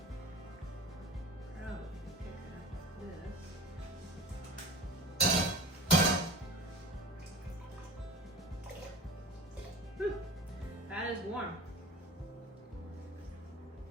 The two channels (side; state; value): both; normal; correlation 0.38